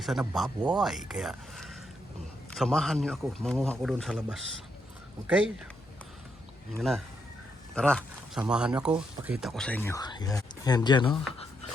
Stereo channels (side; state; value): both; normal; correlation 0.79